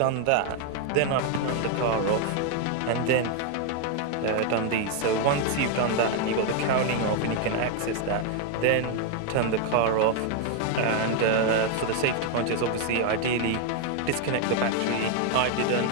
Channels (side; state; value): both; different; correlation 0.01